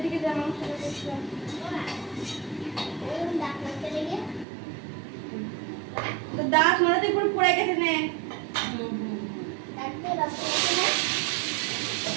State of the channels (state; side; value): drops out; left; at 4.5 s